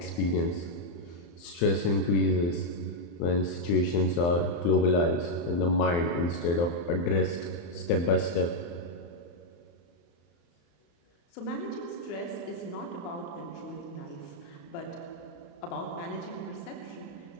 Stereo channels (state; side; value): late; right; 35 ms